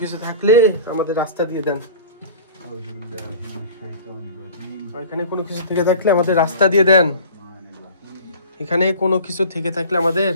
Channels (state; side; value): inverted; both; correlation -0.41